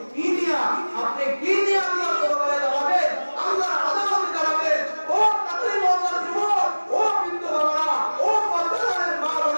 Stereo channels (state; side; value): inverted; both; correlation -1.00